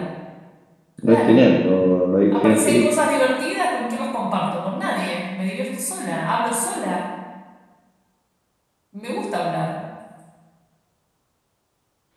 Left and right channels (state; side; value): identical; both; correlation 1.00